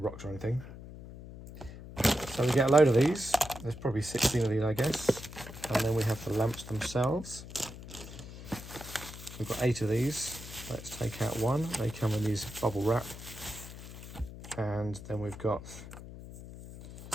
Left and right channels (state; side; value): noise; left; hum, 13 dB below the sound